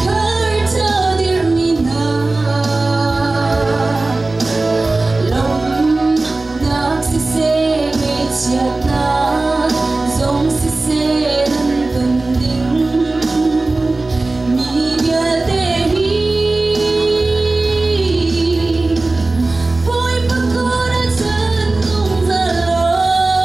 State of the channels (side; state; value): left; quieter; 3.2 dB